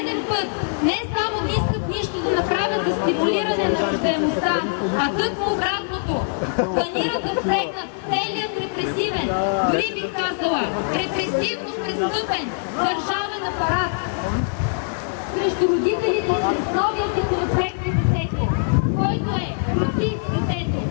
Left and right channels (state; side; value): silent; right; digital silence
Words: път не само мислят нищо да направят за стимулиране на раждаемостта, а тъкмо обратното. Планират да впрегнат целият репресивен, дори бих казала, репресивно престъпен държавен апарат срещу родителите чрез новия законопроект за детето, който е против детето.